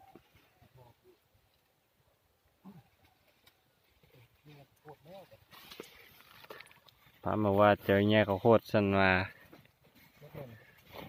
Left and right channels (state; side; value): identical; both; correlation 1.00